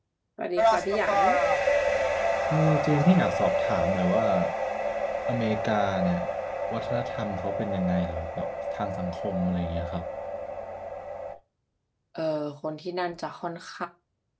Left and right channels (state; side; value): identical; both; correlation 1.00